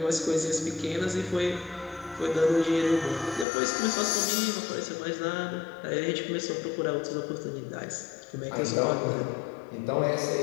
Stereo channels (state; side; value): drops out; right; at 3.5 s